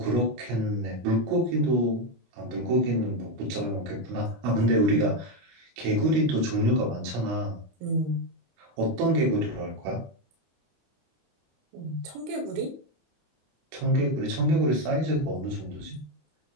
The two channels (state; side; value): late; left; 25 ms